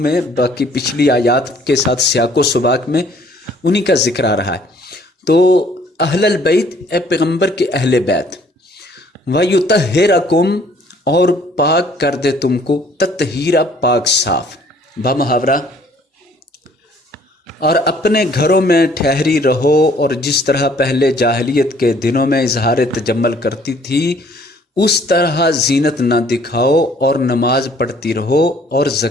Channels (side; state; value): both; normal; correlation 0.59